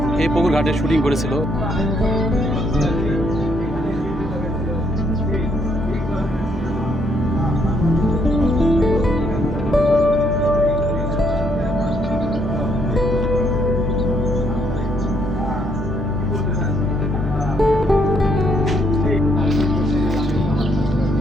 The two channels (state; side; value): normal; both; correlation 0.72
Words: এই পুকুর ঘাটে শুটিং করেছিল।